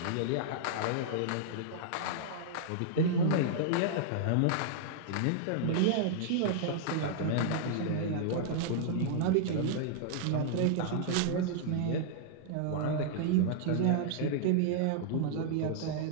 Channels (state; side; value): different; both; correlation -0.01